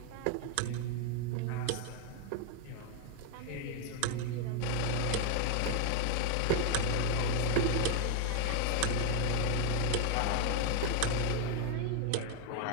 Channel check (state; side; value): different; both; correlation 0.00